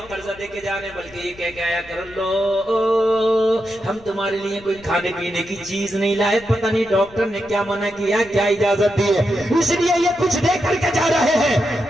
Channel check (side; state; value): left; noise; rumble, 23 dB below the sound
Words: قرضہ دے کے جا رہے ہیں، بلکہ یہ کہہ کے آیا کر لو ہم تمہارے لیے کوئی کھانے پینے کی چیز نہیں لائے، پتہ نہیں ڈاکٹر نے کیا منع کیا، کیا اجازت دی ہے، اس لیے یہ کچھ دے کر کے جا رہے ہیں،